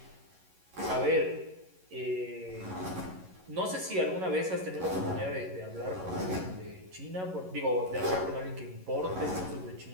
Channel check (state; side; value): late; left; 11 ms